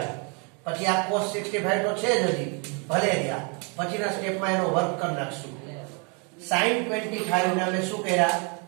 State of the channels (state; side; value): quieter; left; 35.0 dB